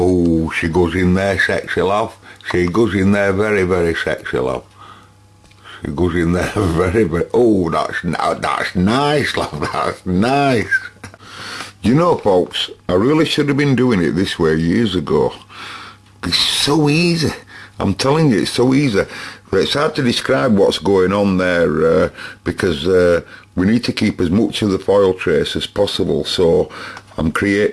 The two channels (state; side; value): identical; both; correlation 1.00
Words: she goes in there, sexy love. She goes in there very, very sexy love. It goes in there very, very, oh, that's nice, love, that's nice. You know, folks, I really should have been doing it this way years ago. It's so easy. I'm telling you, it's so easy. But it's hard to describe what's going on there, because we need to keep as much of the foil trace as possible. So